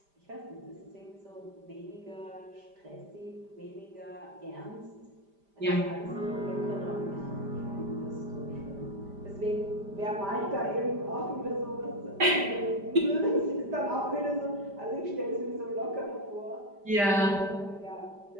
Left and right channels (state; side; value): late; left; 5.0 ms